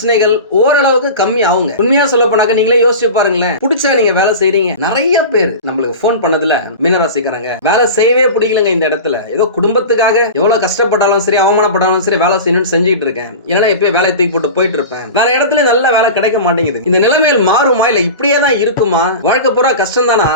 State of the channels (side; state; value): both; inverted; correlation -0.31